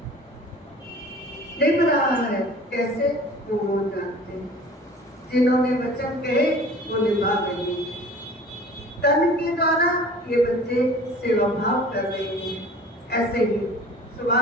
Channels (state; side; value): normal; both; correlation 0.45